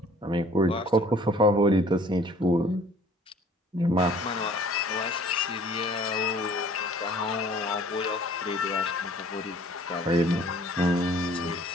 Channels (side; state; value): both; normal; correlation 0.53